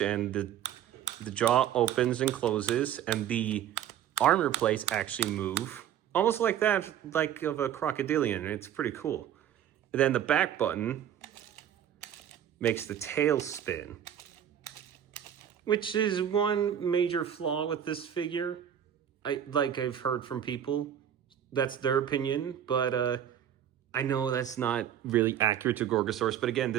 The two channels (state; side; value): quieter; left; 10.1 dB